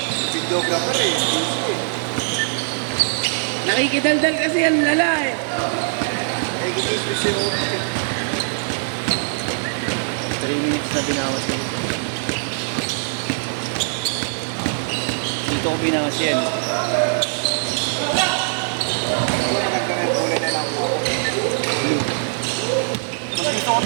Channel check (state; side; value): silent; left; digital silence